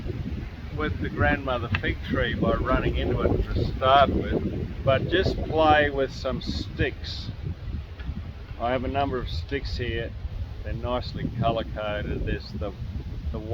with the grandmother fig tree by running into it to start with, but just play with some sticks. I have a number of sticks here. They're nicely colour coded. There's the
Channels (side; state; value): both; identical; correlation 1.00